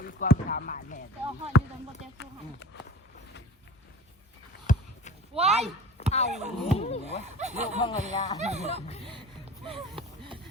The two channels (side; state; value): both; normal; correlation 0.38